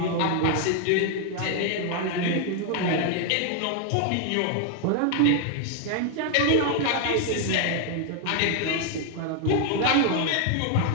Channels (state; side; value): different; both; correlation 0.00